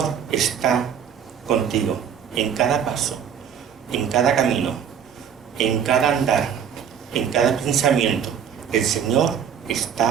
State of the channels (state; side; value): quieter; left; 8.1 dB